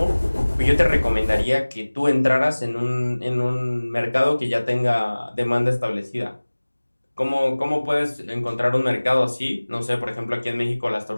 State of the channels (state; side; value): inverted; both; correlation -1.00